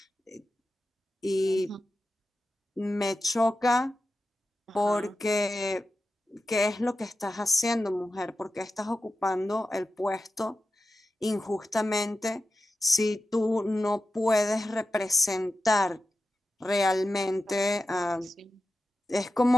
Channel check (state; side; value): normal; both; correlation 0.91